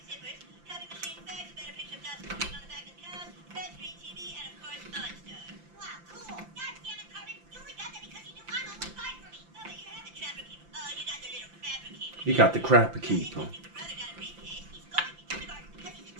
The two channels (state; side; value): late; left; 5.8 ms